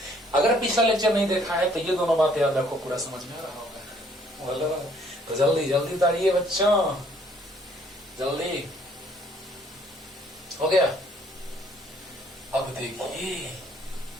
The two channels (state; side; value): normal; both; correlation 0.62